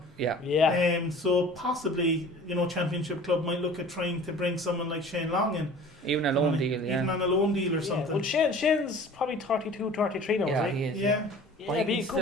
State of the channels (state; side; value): normal; both; correlation 0.44